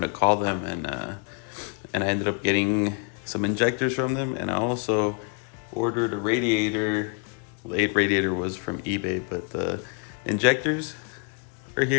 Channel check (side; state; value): right; quieter; 38.6 dB